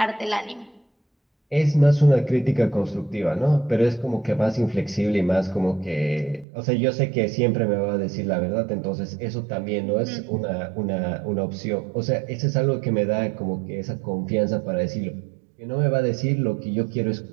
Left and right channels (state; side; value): drops out; left; at 6.5 s